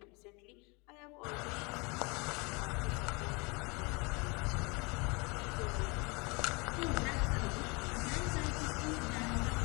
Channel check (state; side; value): quieter; right; 29.1 dB